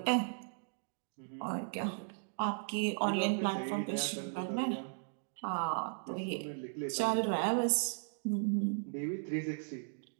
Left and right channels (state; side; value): silent; left; digital silence